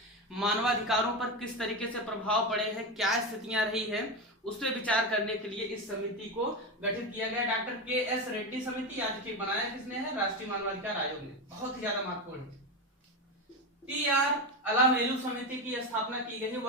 मानवाधिकारों पर किस तरीके से प्रभाव पड़े हैं, क्या स्थितियां रही है, उस पर विचार करने के लिए इस समिति को गठित किया गया। Doctor KS. रेड्डी समिति आज बनाया किसने है? राष्ट्रीय मानवाधिकार आयोग ने। बहुत ही ज्यादा महत्वपूर्ण है। TR अलामेलू समिति की स्थापना की गई है।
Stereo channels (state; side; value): normal; both; correlation 0.16